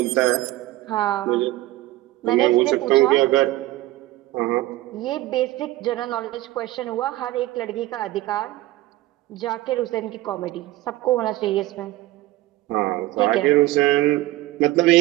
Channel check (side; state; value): left; quieter; 16.8 dB